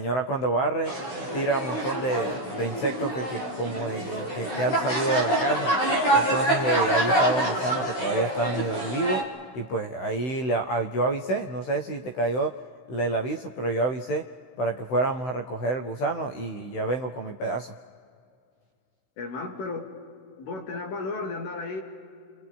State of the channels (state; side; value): late; right; 15 ms